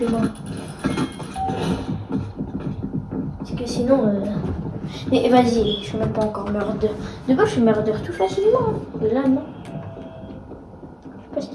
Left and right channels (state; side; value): identical; both; correlation 1.00